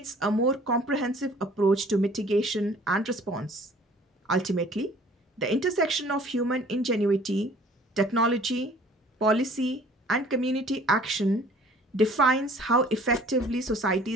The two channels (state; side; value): normal; both; correlation 0.52